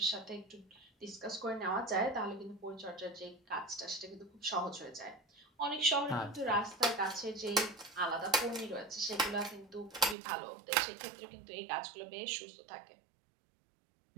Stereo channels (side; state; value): left; drops out; at 10.2 s